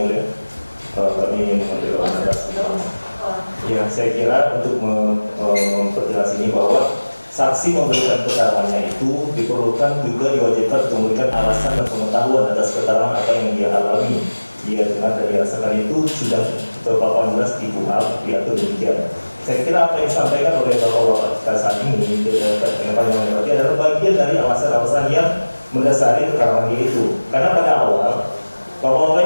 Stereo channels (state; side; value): inverted; both; correlation -1.00